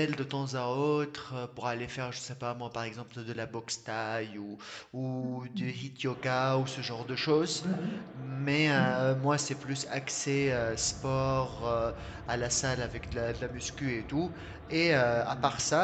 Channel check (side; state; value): both; identical; correlation 1.00